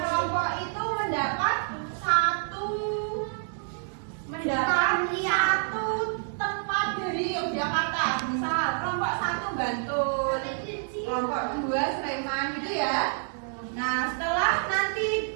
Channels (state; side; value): silent; left; digital silence